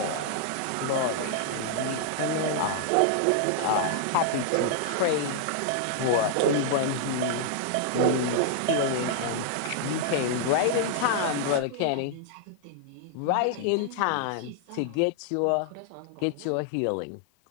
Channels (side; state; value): both; different; correlation -0.01